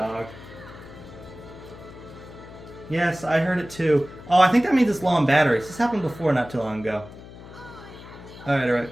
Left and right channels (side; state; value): left; noise; hum, 16 dB below the sound